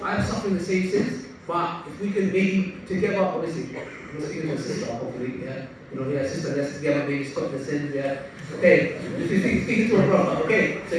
I'm suffering the same sins, but if we can maybe together, obviously, you're speaking to a sister, hopefully, yeah. Sister, let's together maybe stop the sins, yeah. Okay, if you're speaking to a brother, okay, so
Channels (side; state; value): both; identical; correlation 1.00